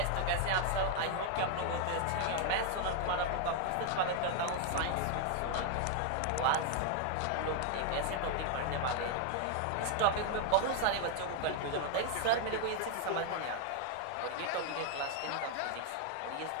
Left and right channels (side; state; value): both; different; correlation 0.00